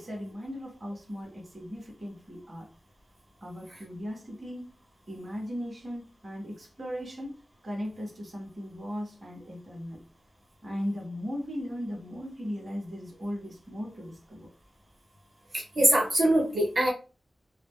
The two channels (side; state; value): both; normal; correlation 0.93